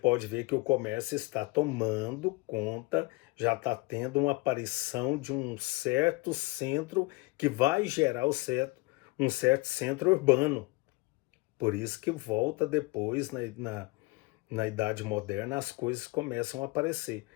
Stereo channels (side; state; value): right; quieter; 24.4 dB